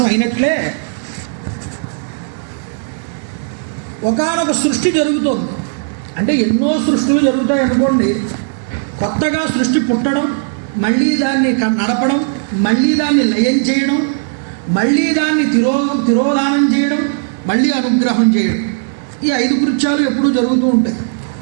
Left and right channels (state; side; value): silent; left; digital silence